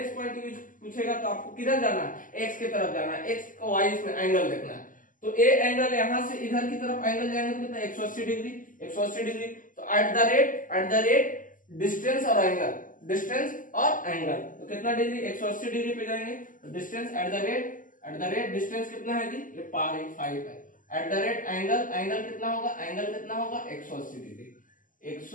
पॉइंट यूज पूछेगा तो आपको किधर जाना है, एक्स की तरफ जाना है, एक्स का वाई में एंगल देखना है। तो ए एंगल यहाँ से इधर की तरफ एंगल जाएंगे तो कितना, 180 डिग्री, 180 डिग्री। तो एट द रेट डिस्टेंस और एंगल, डिस्टेंस और एंगल, तो कितना डिग्री, 180 डिग्री पे जाएंगे। तो distance eight the rate distance कितना है जी, ये 5 है। एट द रेट एंगल कितना होगा, एंगल कितना होगा, 180 डिग्री,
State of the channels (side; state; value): right; late; 0.38 ms